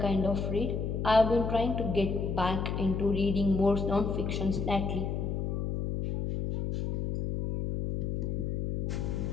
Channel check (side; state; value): left; noise; hum, 1 dB below the sound